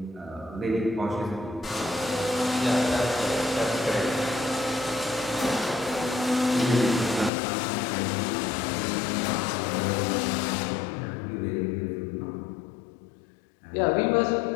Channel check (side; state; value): right; drops out; at 7.3 s